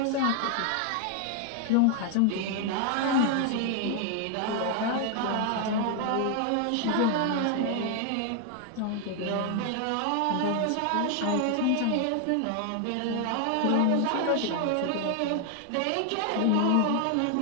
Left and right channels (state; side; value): different; both; correlation 0.01